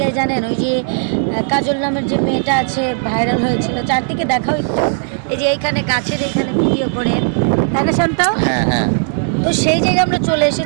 জানেন ওই যে কাজল নামের যে মেয়েটা আছে ভাইরাল হয়েছিল, চারদিকে দেখাও একটু, এই যে এইখানে গাছের এইখানে ভিডিও করে, তাই না শান্ত? হ্যাঁ হ্যাঁ। তো সেই জায়গায় আমরা চলে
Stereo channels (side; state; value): left; silent; 64 dB below the other